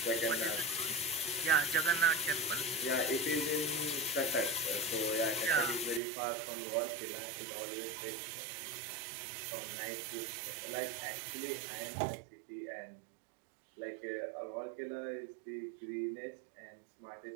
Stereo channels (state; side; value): drops out; left; at 6.0 s